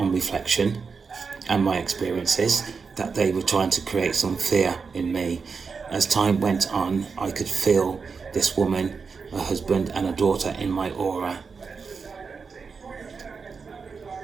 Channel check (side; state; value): left; quieter; 5.2 dB